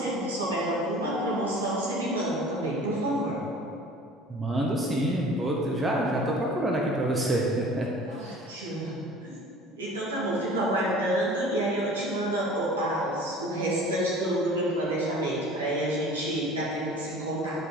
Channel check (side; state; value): both; normal; correlation 0.44